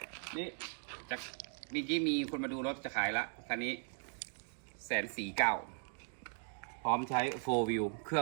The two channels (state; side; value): silent; left; 52 dB below the other